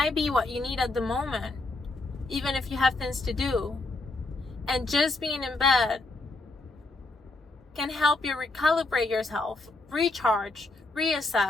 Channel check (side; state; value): right; quieter; 3.1 dB